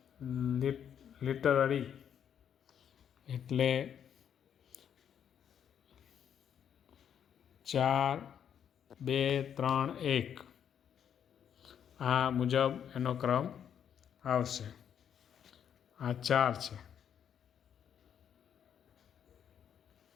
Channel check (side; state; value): right; quieter; 8.7 dB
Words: લિટરરી, એટલે 4 2 3 1 આ મુજબ એનો ક્રમ આવશે। આ 4 છે।